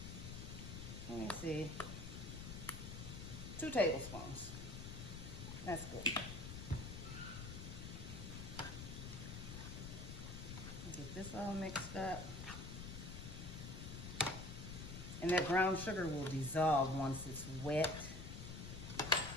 let me see, 2 tablespoons. That's good. Get this all mixed up. And that brown sugar will dissolve once it's wet.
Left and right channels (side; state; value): left; noise; rumble, 7 dB below the sound